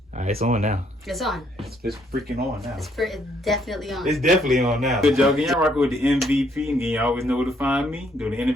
Alright, it's on now. It's on. It's freaking on now. It's definitely on. It's definitely on now. Good job. Y'all rocking with the MVP. And you always know where to find me. Do the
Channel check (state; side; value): normal; both; correlation 0.70